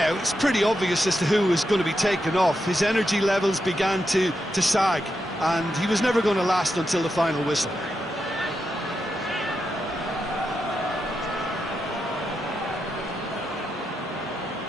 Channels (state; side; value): normal; both; correlation 0.86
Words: it's pretty obvious as to who was going to be taken off. His energy levels began to sag, and he was never going to last until the final whistle.